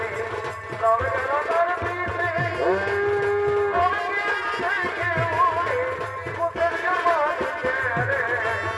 লবে গেল তার পিছে, লবে গেল দেখে উড়ে, কোথের জন্ম দিতে রে,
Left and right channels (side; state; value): both; identical; correlation 1.00